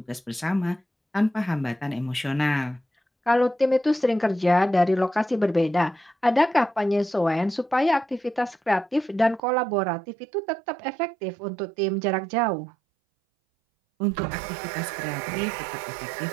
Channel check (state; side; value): drops out; left; at 9.4 s